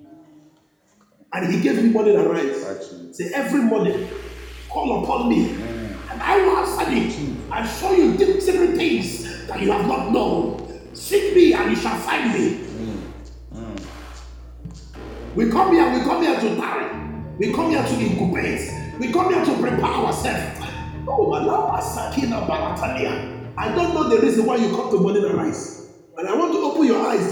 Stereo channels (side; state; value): both; identical; correlation 1.00